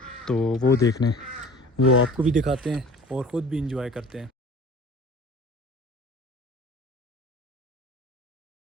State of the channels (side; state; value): both; normal; correlation 0.44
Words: तो वो देखने, वो आपको भी दिखाते हैं और ख़ुद भी इंजॉय करते हैं।